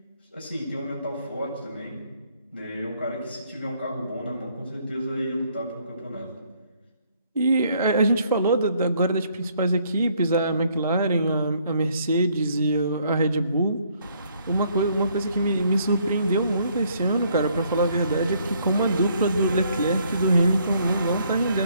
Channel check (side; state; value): both; inverted; correlation -0.67